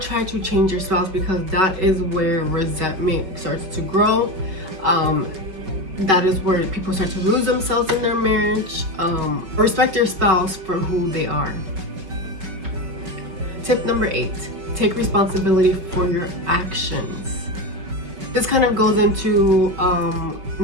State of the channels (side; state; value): left; late; 5.4 ms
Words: to change your spouse, because that is where resentment starts to grow. That is where people start to lose themselves in their marriage. Respect your spouse for who they are. Tip number 8, take responsibility for your actions. This kind of goes into